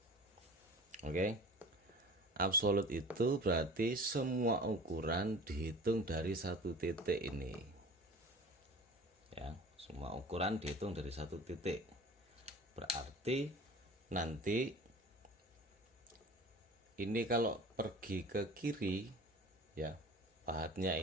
Oke. Absolut itu berarti semua ukuran dihitung dari satu titik ini. Ya, semua ukuran dihitung dari satu titik. Berarti nanti ini kalau pergi ke kiri ya, pahatnya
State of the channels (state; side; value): normal; both; correlation 0.41